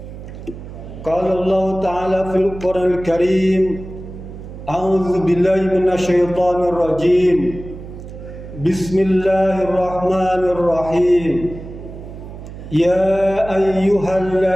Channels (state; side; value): noise; right; hum, 13 dB below the sound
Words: Qala Allah Ta'ala fil Qur'an al-Karim, a'udzu billahi minasy syaithanir rajim. Bismillahirrahmanirrahim. Ya